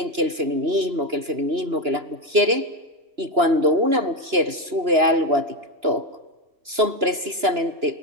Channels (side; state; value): left; late; 2.9 ms